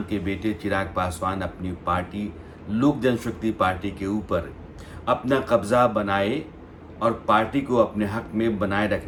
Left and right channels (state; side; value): identical; both; correlation 1.00